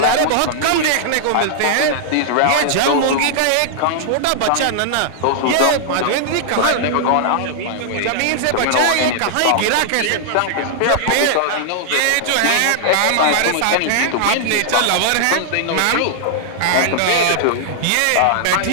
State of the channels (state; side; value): different; both; correlation -0.01